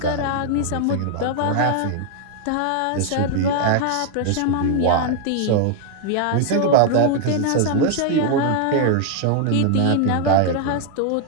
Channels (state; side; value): different; both; correlation 0.00